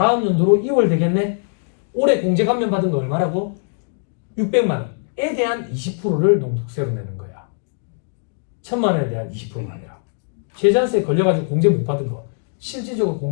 연도로 2월 되겠네. 올해 공제 감면 받은 거 얼마라고? 600만 원에 대한 20%를 농축세로 내는 거야. 1,000만 원에 대한 20%가 아니라. 최저한세에 걸려가지고 공제 못 받은 거. 실질적으로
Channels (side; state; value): right; silent; digital silence